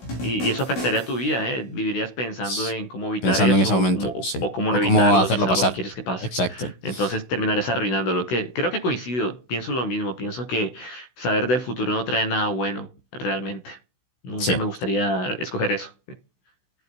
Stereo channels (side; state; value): right; late; 16 ms